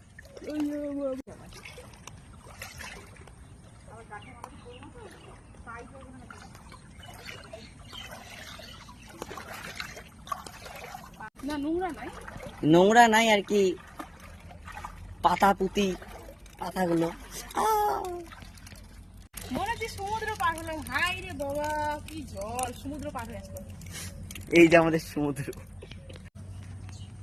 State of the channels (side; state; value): both; identical; correlation 1.00